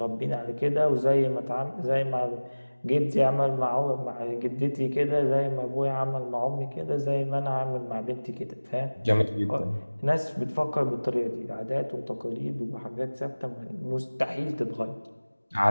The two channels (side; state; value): both; inverted; correlation -1.00